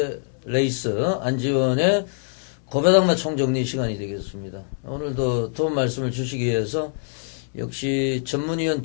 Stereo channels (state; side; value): silent; right; 63 dB below the other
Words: 레이스 안지원의 고배당마 총정리 시간이 되겠습니다. 오늘도 도움 말씀을 주시기 위해서 역시 전문위원